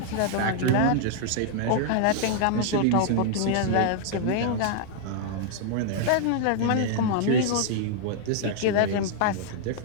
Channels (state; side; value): different; both; correlation -0.01